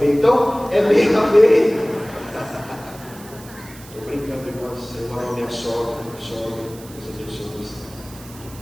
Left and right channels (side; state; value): right; noise; hiss, 19 dB below the sound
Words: então é meio a meio. Estou brincando, irmãos, eu amo minha sogra, Deus abençoe você.